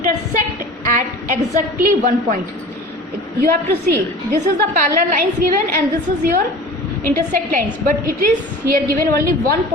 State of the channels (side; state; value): both; normal; correlation 0.39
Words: at exactly one point. You have to see, this is the parallel lines given and this is your intersect lines, but it is here given only one